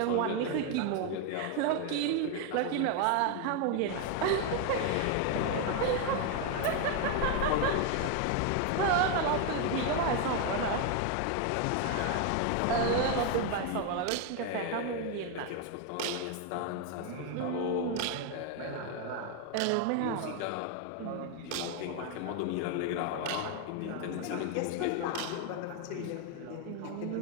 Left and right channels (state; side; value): different; both; correlation 0.01